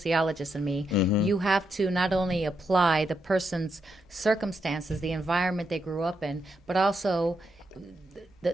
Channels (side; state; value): both; normal; correlation 0.82